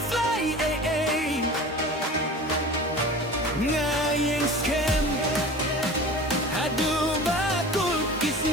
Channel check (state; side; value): normal; both; correlation 0.38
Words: ngayeng skem adu bakul